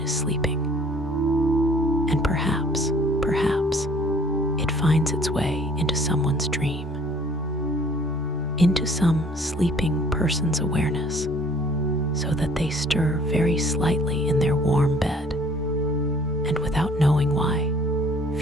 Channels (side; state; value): both; normal; correlation 0.56